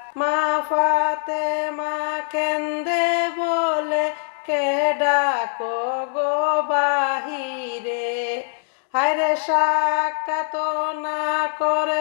মা ফাতেমা কেন্দে বলে, কে ডাকো গো বাহিরে। হায়রে সাক্ষাৎ না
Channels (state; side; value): silent; right; digital silence